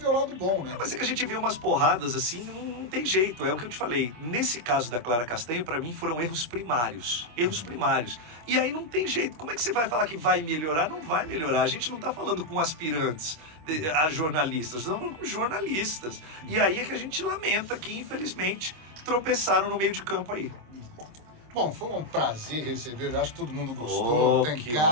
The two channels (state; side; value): late; left; 26 ms